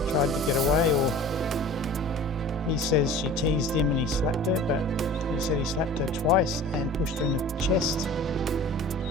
tried to get away, or he says she teased him and he slapped her, but he said he slapped her twice and pushed her in the chest.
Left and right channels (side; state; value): both; normal; correlation 0.42